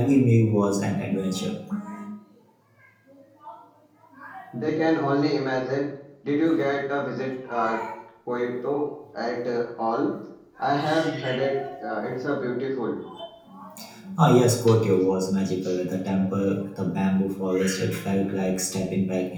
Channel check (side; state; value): both; identical; correlation 1.00